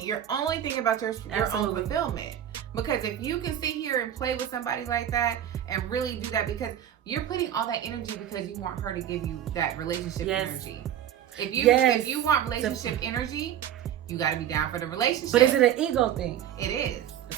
only thinking about your own fulfillment. Because if you can sit here and play with somebody like that and really do that, because you're putting all that energy because you want her to give you that relationship energy. If you want relationship energy, you got to be down for the relationship. But is it an ego thing? It is.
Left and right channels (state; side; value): quieter; left; 10.7 dB